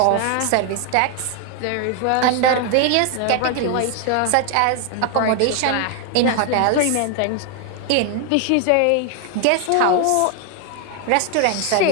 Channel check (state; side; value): different; both; correlation 0.01